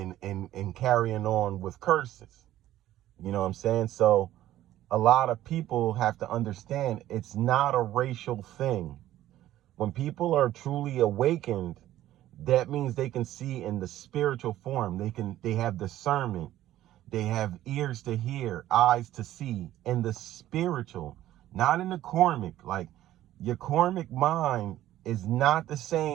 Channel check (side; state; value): left; quieter; 13.7 dB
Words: carrying on with curses. You know what I'm saying? So a lot of people have to understand it's not a racial thing. When people are truly awakened, that means they can see in the spiritual form. They have discernment. They have ears to hear, eyes to see in the spiritual, not in the karmic. Like your karmic mind is not the